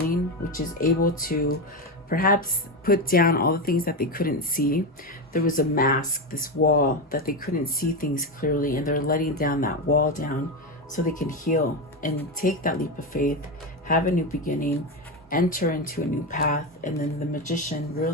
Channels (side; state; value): both; normal; correlation 0.14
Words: which is able to perhaps put down all the things that they couldn't see. There was a mask, this wall, that they couldn't see things clearly, and they're letting down that wall down so they can heal and take that leap of faith, have a new beginning, enter into a new path. And then the Magician,